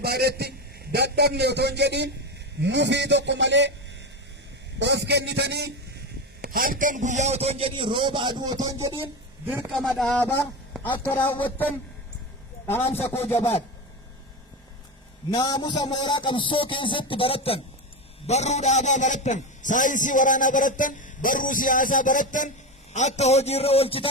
dadhabne otoo hin jedhiin mufii tokko malee of kennitanii halkan guyyaa otoo hin jedhiin rooba aduu otoo hin jedhiin dirqama dhaabaa akka raawwattan dhaamsa koo jabaadha. Naamusa mooraa qabsoo keessatti barattan, barruu dhaabaa barattan, saayinsii waraanaa barattan, barruu siyaasaa barattan, akka hojiirra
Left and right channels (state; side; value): normal; both; correlation 0.18